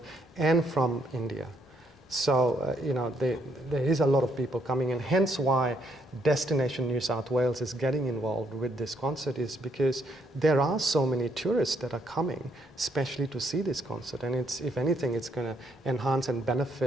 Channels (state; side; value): normal; both; correlation 0.72